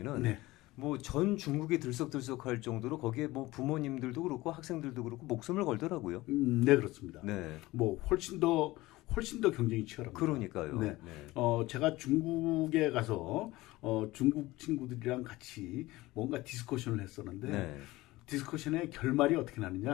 네. 뭐 전 중국이 들썩들썩할 정도로 거기에 뭐 부모님들도 그렇고 학생들도 그렇고 목숨을 걸더라고요. 네, 그렇습니다. 네. 뭐 훨씬 더 경쟁이 치열합니다. 그러니까요. 네. 제가 중국에 가서 중국 친구들이랑 같이 뭔가 디스커션을 했었는데 네. 디스커션의 결말이 어떻게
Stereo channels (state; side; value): quieter; right; 19.1 dB